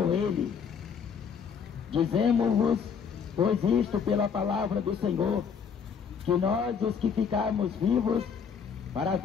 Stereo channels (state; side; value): quieter; right; 6.7 dB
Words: ele. Dizemos-vos, pois isto pela palavra do Senhor, que nós, os que ficarmos vivos para a